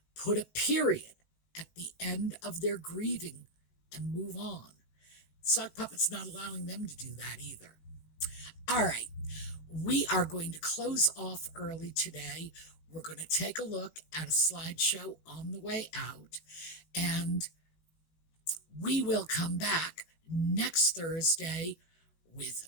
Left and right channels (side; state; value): right; late; 19 ms